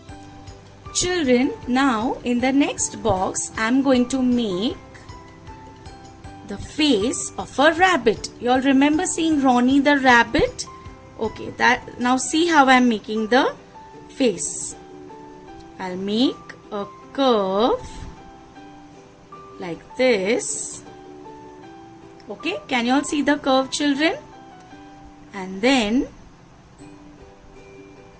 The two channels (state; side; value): identical; both; correlation 1.00